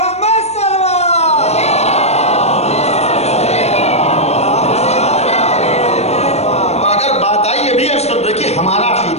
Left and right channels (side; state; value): right; late; 0.31 ms